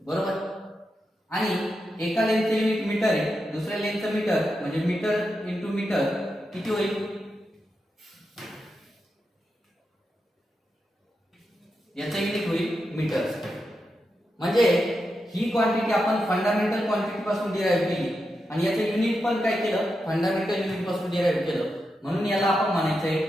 बरोबर. आणि एका लेंथचं युनिट मीटर आहे, दुसऱ्या लेंथचं मीटर म्हणजे मीटर इंटू मीटर किती होईल? याचा युनिट होईल मीटर्स. म्हणजे ही क्वांटिटी आपण फंडामेंटल क्वांटिटी पासून डिराईव्ह केली आणि याचं युनिट पण काय केलं, फंडामेंटल युनिट पासून डिराईव्ह केलं. म्हणून याला आपण म्हणायचंय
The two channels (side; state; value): both; normal; correlation 0.87